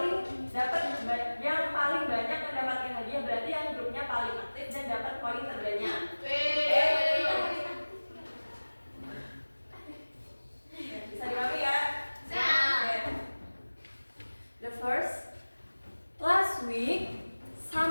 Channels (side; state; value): both; inverted; correlation -1.00